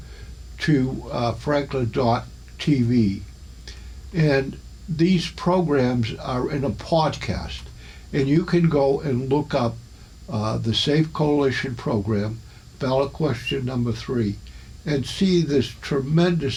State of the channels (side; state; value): both; identical; correlation 1.00